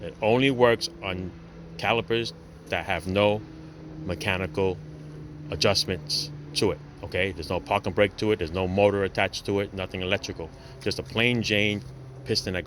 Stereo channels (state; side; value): identical; both; correlation 1.00